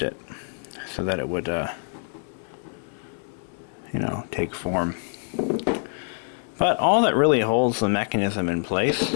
it so that it would, you know, take form. But all that really holds the mechanism in place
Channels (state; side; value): silent; right; digital silence